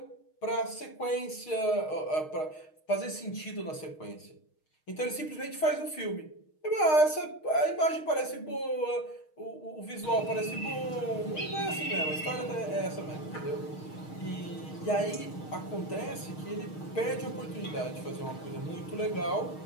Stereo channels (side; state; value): right; late; 6.4 ms